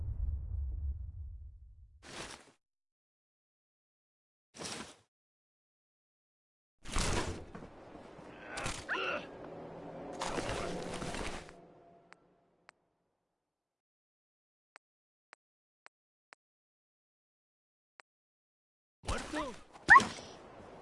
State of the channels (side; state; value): both; identical; correlation 1.00